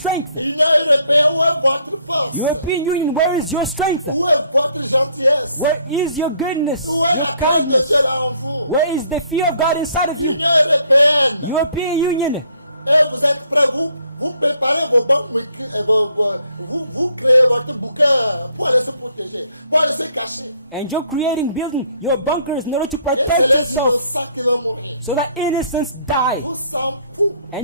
Union européenne, où est votre force? European Union, where is your strength? Où est votre gentillesse? Where is your goodness? Où est la crainte de Dieu là en vous? Where is the fear of God inside of you? Union européenne. European Union. Et vous êtes prêts, vous préparez vos banques, vous créez votre bouquin pour aller se protéger, pour aller se cacher. And you're creating, building your bunkers in order to Et protect c'est les yourself innocents qui vont mourir. so that innocents die. Vous s'en fout.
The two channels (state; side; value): inverted; both; correlation -0.66